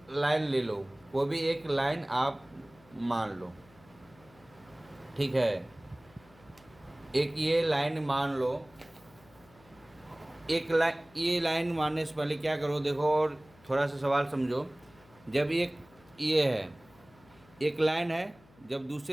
लाइन ले लो, कोई भी एक लाइन आप मान लो। ठीक है, एक ये लाइन मान लो। एक लाइन, ये लाइन मारने से पहले क्या करो, देखो और थोड़ा सा सवाल समझो। जब एक ये है, एक लाइन है, जब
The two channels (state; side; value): noise; left; hum, 27 dB below the sound